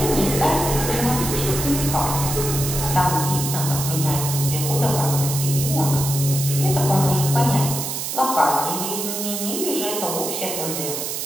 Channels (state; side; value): noise; right; hiss, 4 dB below the sound